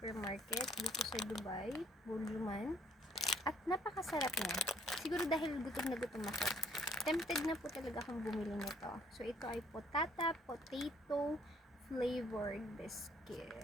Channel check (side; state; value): both; normal; correlation 0.63